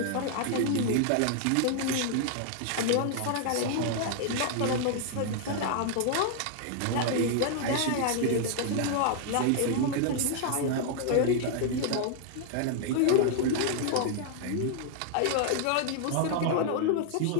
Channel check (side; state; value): both; different; correlation 0.00